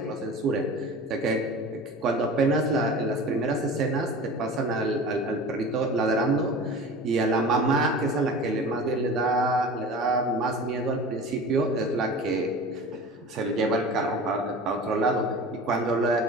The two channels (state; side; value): normal; both; correlation 0.37